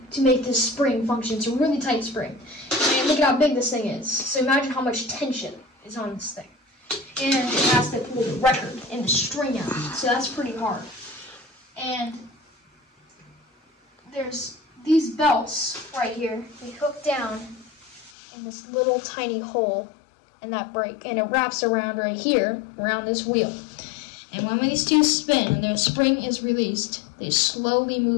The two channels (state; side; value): drops out; right; at 18.1 s